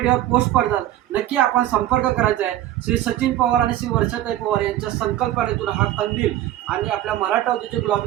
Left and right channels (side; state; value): left; quieter; 13.5 dB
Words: पोस्ट पडतात. नक्की आपण संपर्क करायचा आहे. श्री सचिन पवार आणि श्री वर्षाताई पवार यांच्या संकल्पनेतून हा कंदील आणि आपल्या मराठा उद्योजक